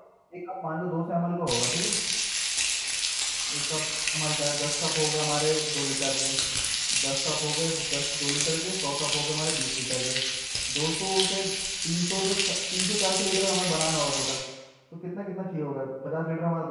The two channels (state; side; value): identical; both; correlation 1.00